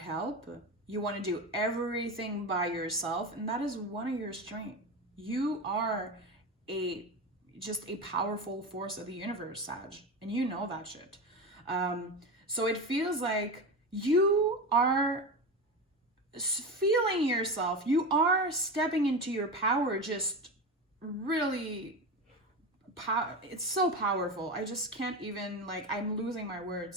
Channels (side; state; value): both; normal; correlation 0.22